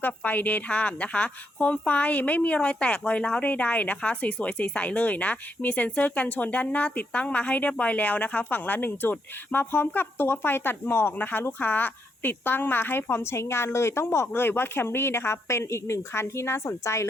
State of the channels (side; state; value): both; normal; correlation 0.78